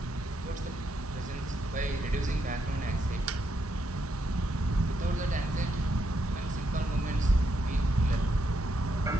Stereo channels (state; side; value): normal; both; correlation 0.79